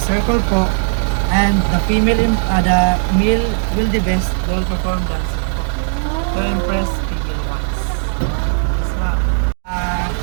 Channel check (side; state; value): left; silent; digital silence